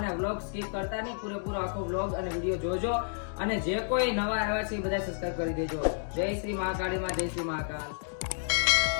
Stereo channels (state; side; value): silent; right; digital silence